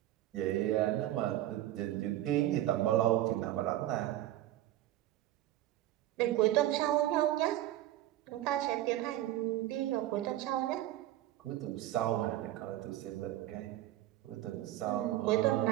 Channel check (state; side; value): quieter; left; 14.2 dB